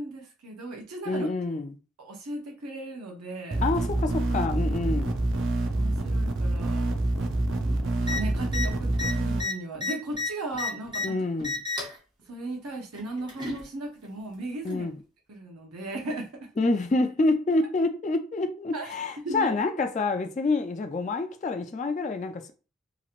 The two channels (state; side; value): normal; both; correlation 0.67